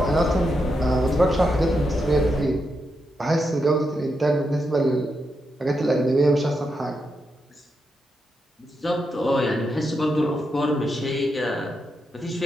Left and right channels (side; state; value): both; normal; correlation 0.84